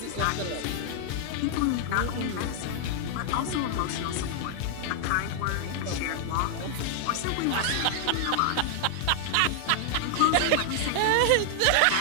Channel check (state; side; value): different; both; correlation 0.00